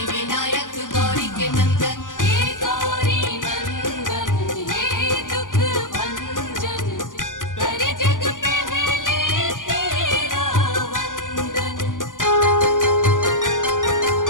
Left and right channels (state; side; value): late; right; 0.88 ms